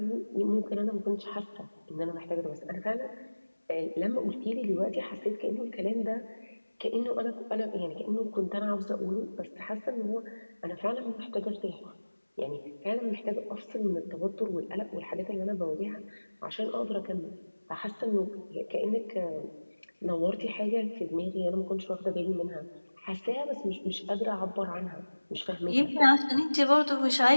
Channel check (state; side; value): inverted; both; correlation -1.00